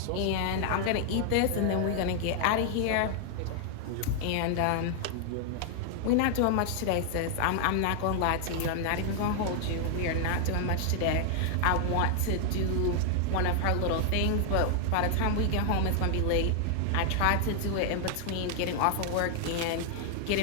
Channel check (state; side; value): different; both; correlation 0.00